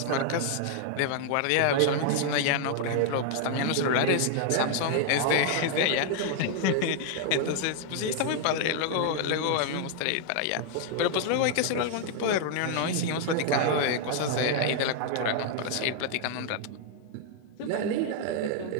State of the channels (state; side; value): different; both; correlation 0.00